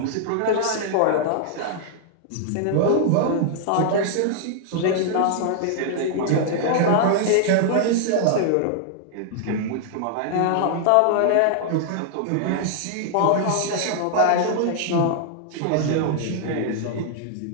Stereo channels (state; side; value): different; both; correlation -0.01